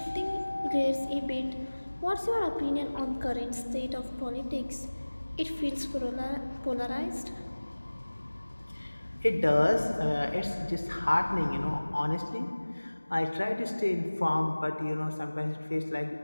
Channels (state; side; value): inverted; both; correlation -1.00